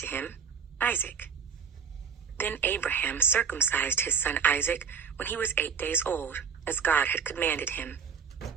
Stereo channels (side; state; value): left; quieter; 6.6 dB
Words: him, Isaac. Then Abraham circumcised his son Isaac when he was 8 days old, as God had commanded him.